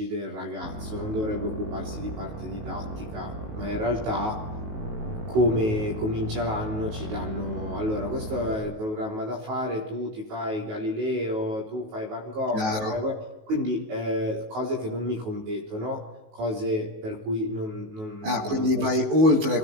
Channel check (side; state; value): left; late; 19 ms